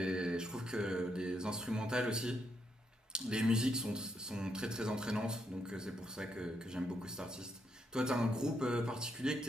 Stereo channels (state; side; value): normal; both; correlation 0.79